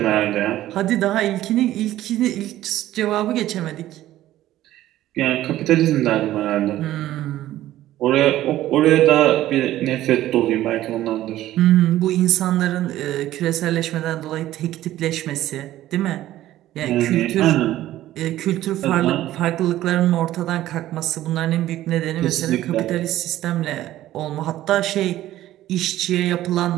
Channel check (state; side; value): quieter; left; 14.2 dB